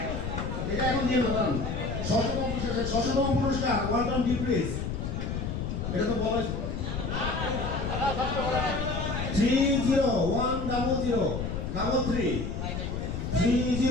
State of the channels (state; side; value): noise; left; rumble, 3 dB below the sound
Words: এটা এখন দিয়ে দেন ষষ্ঠতম পুরস্কার ওয়ালটন ডিপ ফ্রিজ এটা তো বলা 3010033